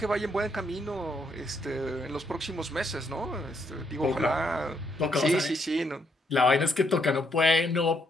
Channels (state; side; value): normal; both; correlation 0.74